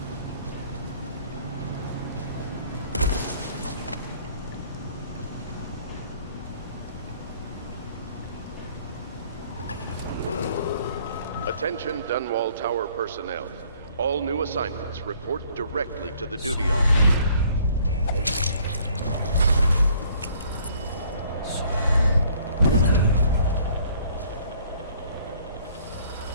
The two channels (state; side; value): inverted; both; correlation -0.59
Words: Attention Dunwall Tower personnel. All new assignments report directly to the duty officer.